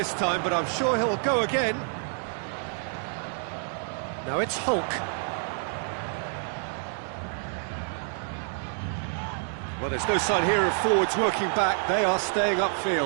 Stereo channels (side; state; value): left; silent; 56 dB below the other